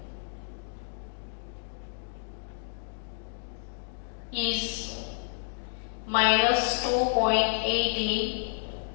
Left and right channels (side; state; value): right; silent; digital silence